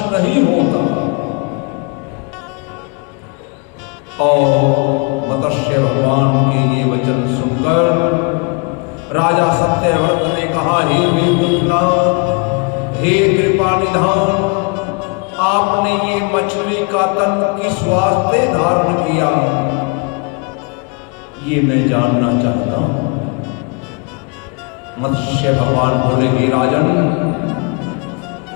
नहीं होता। और मत्स्य भगवान के ये वचन सुनकर राजा सत्यव्रत ने कहा, हे मेघनाथ, हे कृपा निधान, आपने ये मछली का तन किस वास्ते धारण किया, ये मैं जानना चाहता हूं। मत्स्य भगवान बोले, हे राजन,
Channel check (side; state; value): right; quieter; 31.6 dB